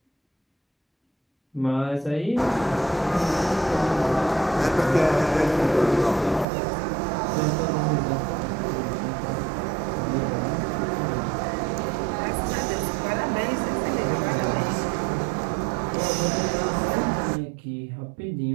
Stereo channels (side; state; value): left; drops out; at 6.5 s